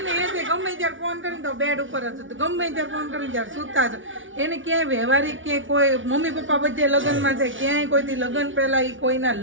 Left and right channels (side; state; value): left; late; 0.56 ms